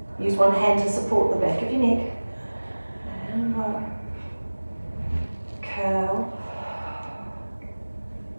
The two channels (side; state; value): both; inverted; correlation -1.00